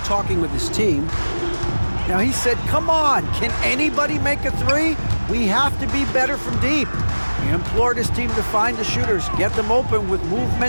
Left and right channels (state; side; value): inverted; both; correlation -1.00